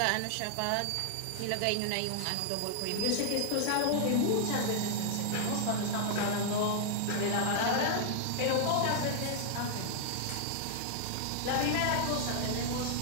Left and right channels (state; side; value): different; both; correlation -0.01